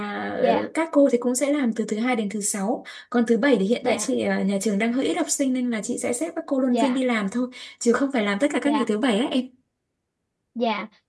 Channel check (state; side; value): identical; both; correlation 1.00